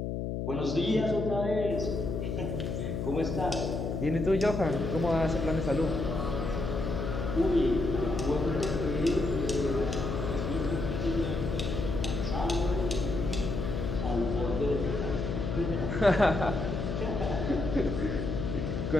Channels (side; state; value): left; noise; hum, 2 dB below the sound